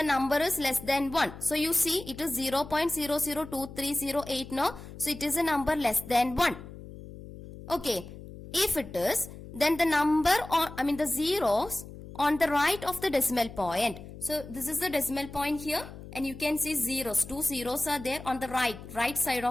number is less than 1, so you see it is 0.002308 now, so it is a number less than 1. Okay, if it is, then the number the zeros on the right of the decimal point. So this is the decimal point here, and you can see zeros. 2 zeros are there on the right side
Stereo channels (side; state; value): left; noise; hum, 14 dB below the sound